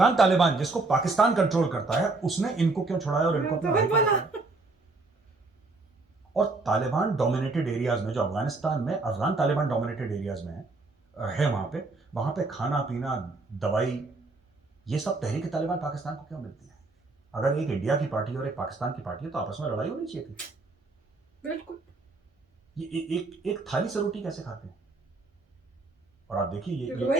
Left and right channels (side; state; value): left; quieter; 3.4 dB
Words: तालिबान जिसको पाकिस्तान कंट्रोल करता है उसने इनको क्यों छुड़ाया और इनको अपने भाई को हटाया? और तालिबान डोमिनेटेड एरियाज में, जो अफगानिस्तान में अफगान तालिबान डोमिनेटेड एरियाज में है वहां पे खाना पीना दवाई ये सब तहरीक तालिबान पाकिस्तान को क्यों मिलती है? अगर एक इंडिया की पार्टी और एक पाकिस्तान की पार्टी है तो आपस में लड़ाई होनी चाहिए थी। बिल्कुल। ये एक थाली से रोटी कैसे खाते हैं? और आप देखिए ये छोटा